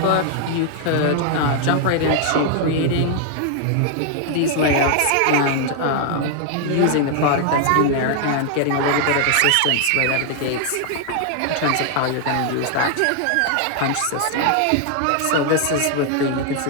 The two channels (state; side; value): different; both; correlation 0.00